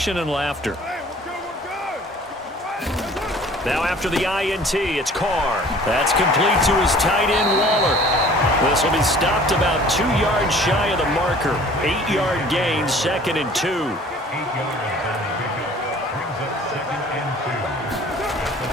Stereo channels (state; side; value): normal; both; correlation 0.50